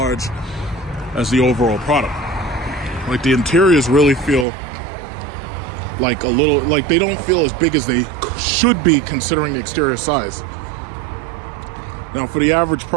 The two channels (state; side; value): drops out; left; at 4.5 s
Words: as the overall product. Like the interiors really feel like a little, like they don't feel as big as they should be considering the exterior size. Now for the average